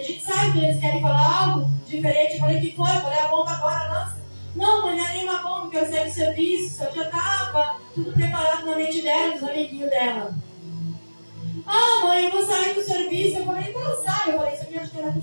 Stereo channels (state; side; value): inverted; both; correlation -1.00